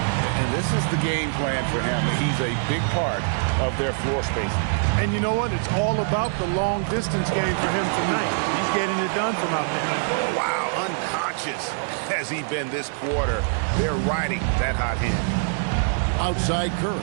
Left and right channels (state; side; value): silent; left; digital silence